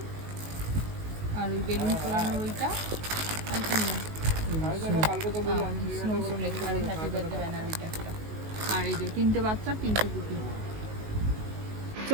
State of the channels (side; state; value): left; late; 19 ms